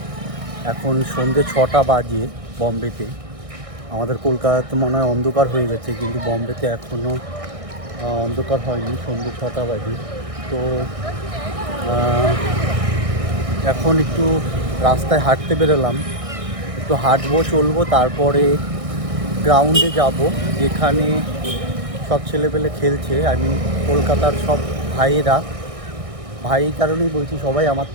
এখন সন্ধ্যে 6টা বাজে বম্বেতে। আমাদের কলকাতাতে মনে হয় অন্ধকার হয়ে গেছে, কিন্তু বম্বেতে এখনও অন্ধকার হয়নি, সন্ধ্যে 6টা বাজে। তো এখন একটু রাস্তায় হাঁটতে বেরোলাম, একটু হাঁটবো চলবো, তারপরে গ্রাউন্ডে যাব যেখানে সব ছেলেপেলে খেলছে। আমি কলকাতার সব ভাই কারণেই বলছি, সবাই আমার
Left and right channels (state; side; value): late; left; 1.6 ms